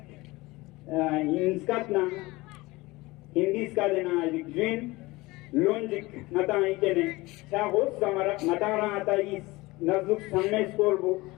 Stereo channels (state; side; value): quieter; right; 21.3 dB